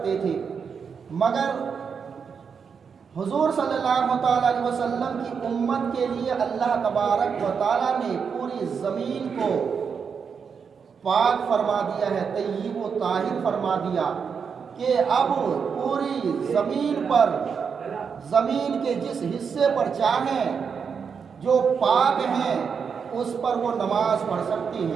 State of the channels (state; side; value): quieter; left; 6.3 dB